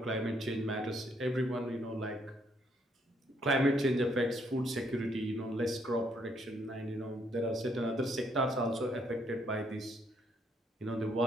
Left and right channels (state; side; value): normal; both; correlation 0.71